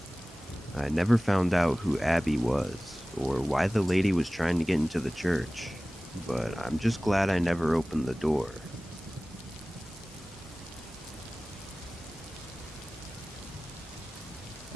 I never found out who Abby was, or why the lady was trying to get into the church, but I'm just glad I never opened the door.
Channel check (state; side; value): normal; both; correlation 0.98